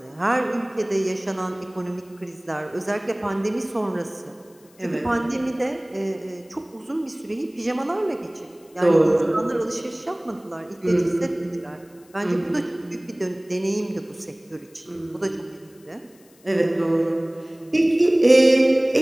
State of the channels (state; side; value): noise; left; hiss, 30 dB below the sound